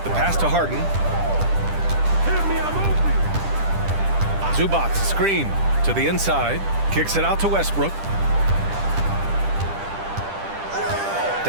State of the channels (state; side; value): late; left; 10 ms